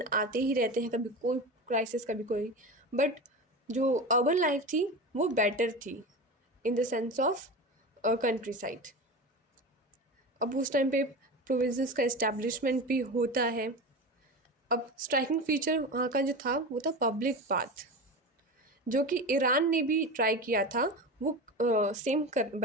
आते ही रहते हैं, कभी कोई क्राइसिस कभी कोई। बट जो अर्बन लाइफ थी वो बेटर थी in the sense of country side. अब उस टाइम पे प्रोविंसेस का इस्टेब्लिशमेंट भी होता है। अब स्ट्राइकिंग फीचर वहाँ का जो था वो था पब्लिक बाथ, जो कि ईरान ने भी ट्राई किया था वो सेम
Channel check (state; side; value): normal; both; correlation 0.27